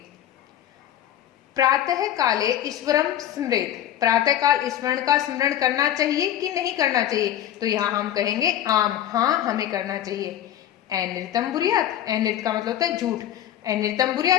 प्रातः काले ईश्वरम स्मृत, प्रातः काल ईश्वर का स्मरण करना चाहिए कि नहीं करना चाहिए, तो यहाँ हम कहेंगे आम, हाँ हमें करना चाहिए। अनृतम बुरियात, अनृत का मतलब होता है झूठ, अनृतम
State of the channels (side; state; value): right; quieter; 11.5 dB